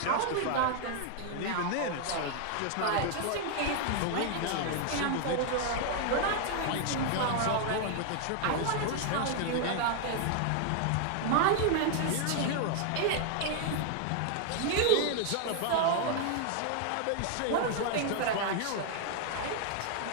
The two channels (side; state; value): both; different; correlation 0.00